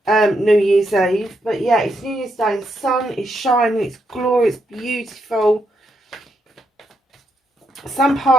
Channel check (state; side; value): normal; both; correlation 0.80